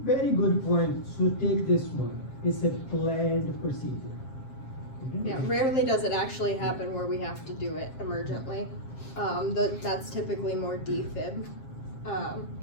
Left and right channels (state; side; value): late; right; 7.5 ms